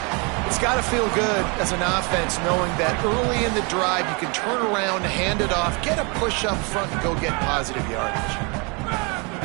It's got to feel good as an offense knowing that early in the drive you can turn around, hand it off, get a push up front, and go get positive yardage.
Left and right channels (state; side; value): quieter; left; 31.7 dB